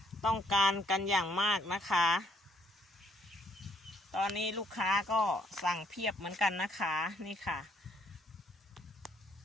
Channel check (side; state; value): both; normal; correlation 0.69